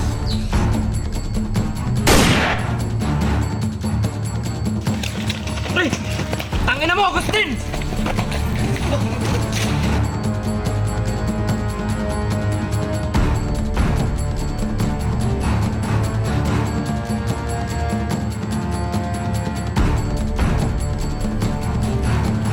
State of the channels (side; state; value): both; identical; correlation 1.00